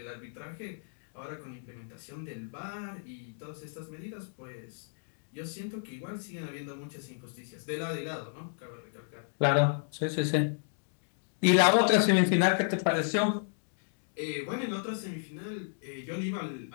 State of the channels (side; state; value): right; silent; digital silence